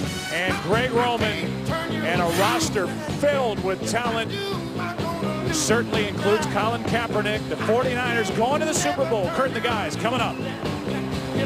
and Greg Roman, and a roster filled with talent. Certainly includes Colin Kaepernick. The 49ers going to the Super Bowl. Kurt and the guys coming up.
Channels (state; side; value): identical; both; correlation 1.00